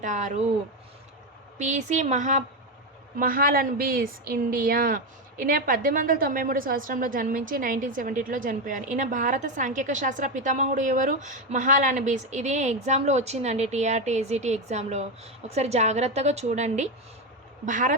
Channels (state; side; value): normal; both; correlation 0.10